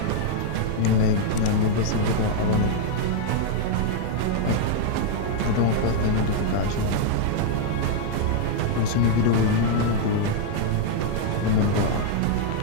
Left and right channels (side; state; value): both; different; correlation -0.01